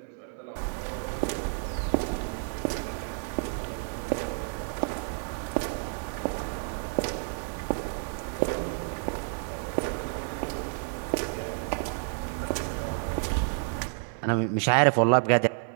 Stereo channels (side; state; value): left; silent; 58 dB below the other